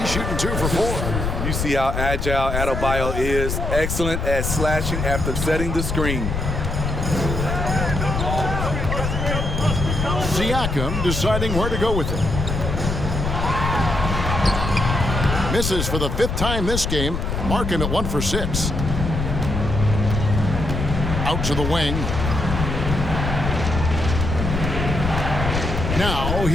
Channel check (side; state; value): left; noise; rumble, 2 dB below the sound